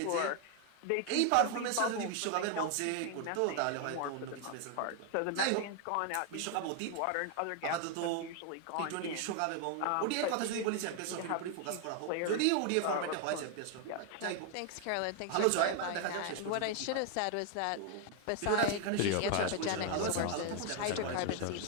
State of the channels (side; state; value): both; different; correlation 0.00